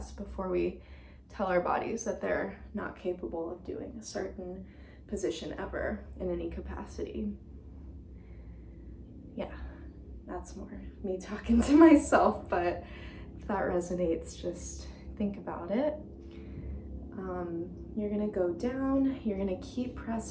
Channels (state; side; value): identical; both; correlation 1.00